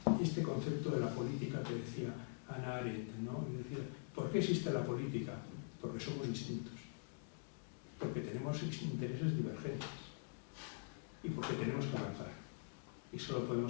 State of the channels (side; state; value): right; silent; digital silence